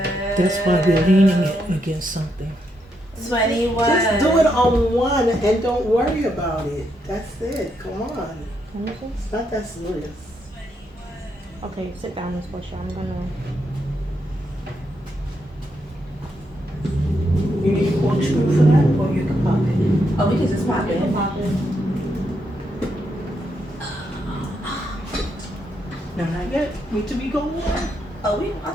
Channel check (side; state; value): both; normal; correlation 0.79